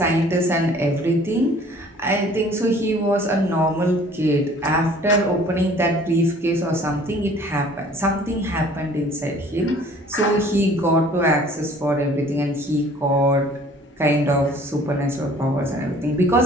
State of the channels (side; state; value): both; normal; correlation 0.52